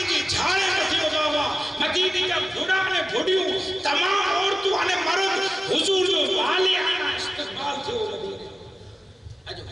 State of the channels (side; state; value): both; normal; correlation 0.96